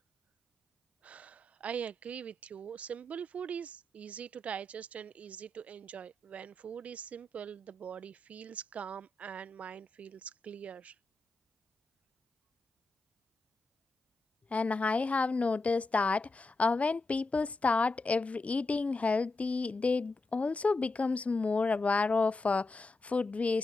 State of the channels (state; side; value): quieter; right; 3.0 dB